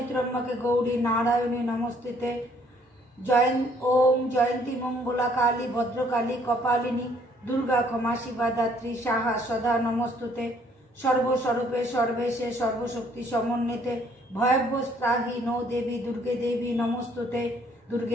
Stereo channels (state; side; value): normal; both; correlation 0.63